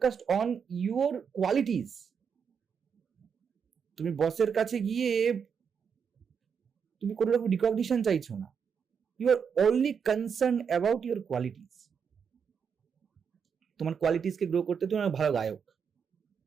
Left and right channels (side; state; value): left; quieter; 6.8 dB